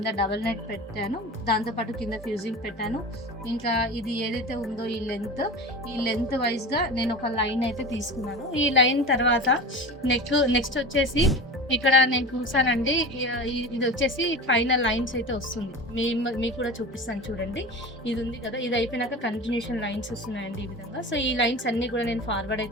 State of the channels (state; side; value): normal; both; correlation 0.31